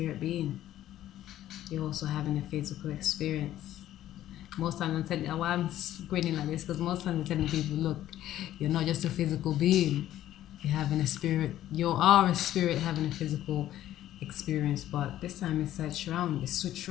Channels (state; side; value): quieter; right; 12.9 dB